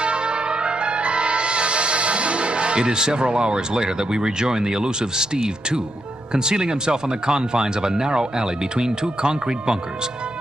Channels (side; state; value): right; noise; rumble, 29 dB below the sound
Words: It is several hours later that we rejoin the elusive Steve 2, concealing himself on the confines of a narrow alley between two concrete bunkers,